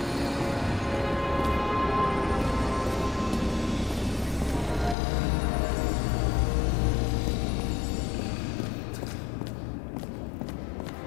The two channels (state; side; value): drops out; right; at 5.0 s